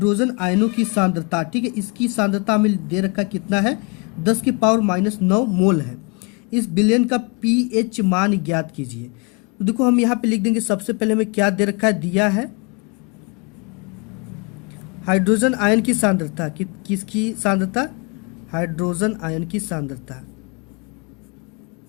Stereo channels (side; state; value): right; quieter; 31.0 dB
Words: आयनों की सांद्रता, ठीक है, इसकी सांद्रता में दे रखा कितना है, 10⁻⁹ मोल है। इस बिलियन का पीएच मान ज्ञात कीजिए। तो देखो हम यहाँ पे लिख देंगे, सबसे पहले हमें क्या दे रखा है, दिया है हाइड्रोजन आयन की सांद्रता, किसकी सांद्रता, हाइड्रोजन आयन की सांद्रता।